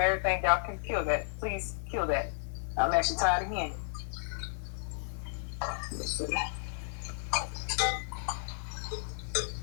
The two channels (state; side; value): silent; right; digital silence